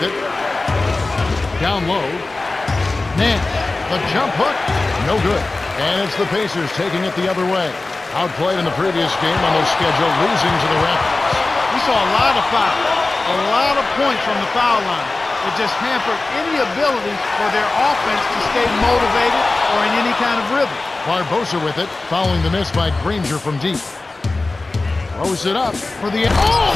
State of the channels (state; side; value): quieter; right; 3.3 dB